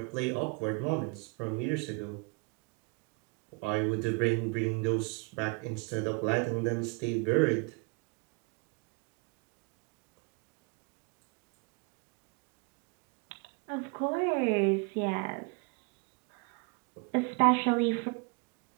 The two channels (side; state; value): left; quieter; 32.2 dB